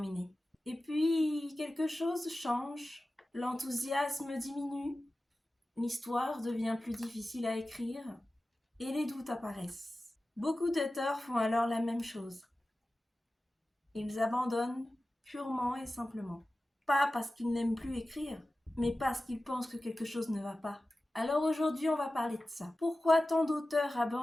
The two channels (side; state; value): both; normal; correlation 0.95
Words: Et puis, quelque chose change, l'enthousiasme diminue, l'histoire devient plus difficile à écrire et les doutes apparaissent. Beaucoup d'auteurs font alors la même chose. Ils abandonnent purement et simplement. Pas parce qu'ils n'aiment plus écrire, mais parce qu'ils pensent que quelque chose ne va pas. Alors aujourd'hui, on va parler de ça. Pourquoi tant d'auteurs